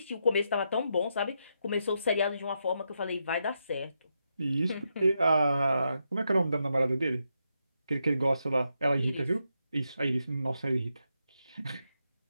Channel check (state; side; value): inverted; both; correlation -0.83